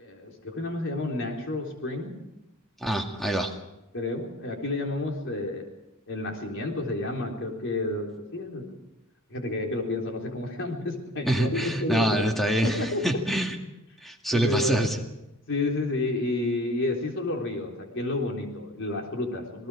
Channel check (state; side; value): normal; both; correlation 0.46